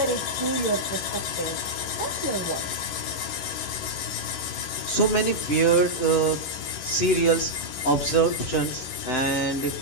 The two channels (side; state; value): right; late; 11 ms